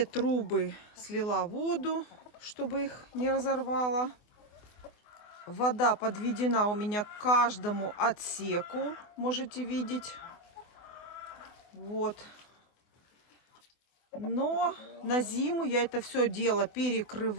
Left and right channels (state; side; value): late; right; 24 ms